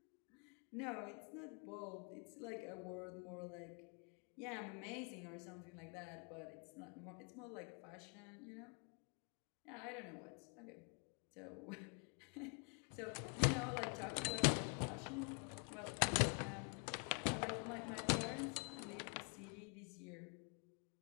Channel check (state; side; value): quieter; right; 39.1 dB